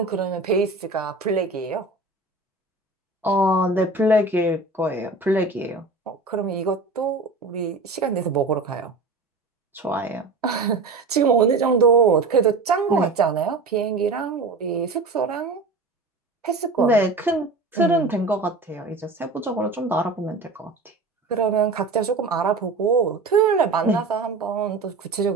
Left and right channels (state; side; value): quieter; left; 3.5 dB